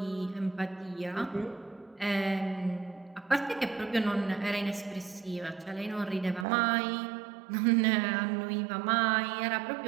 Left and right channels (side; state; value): left; drops out; at 6.5 s